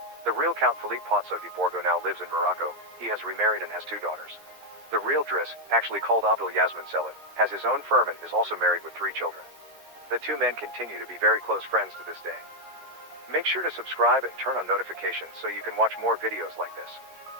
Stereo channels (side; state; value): left; late; 13 ms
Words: The real Count Philippe Pozzo di Borgo now lives in Morocco. He has remarried and has 2 daughters. The real Driss, actually called Abdul Yasmin Selim, has his own firm and is also married with 3 children. The 2 men continue to be very close friends to this day. Make sure to subscribe and turn on notifications so you can watch more videos like this.